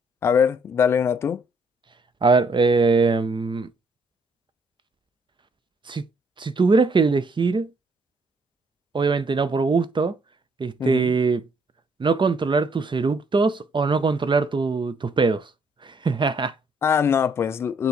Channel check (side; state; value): both; normal; correlation 0.67